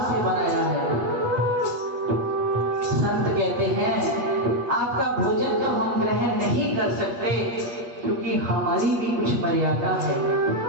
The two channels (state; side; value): late; left; 8.4 ms